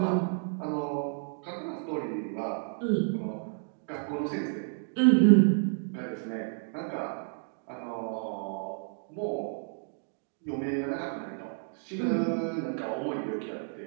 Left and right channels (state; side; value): silent; left; digital silence